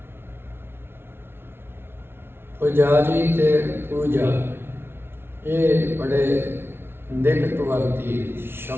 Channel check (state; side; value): late; left; 0.11 ms